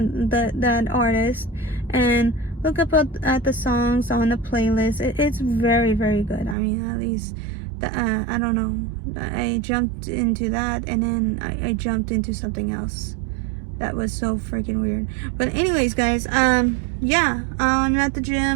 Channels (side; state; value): left; drops out; at 6.6 s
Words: artist, and look up at the songs on the playlist. It's very, very good. I mean, at least I don't know, I jumped into that, and then I jumped into something else that was so freaking weird. But anyways, guys, yeah, I'm at the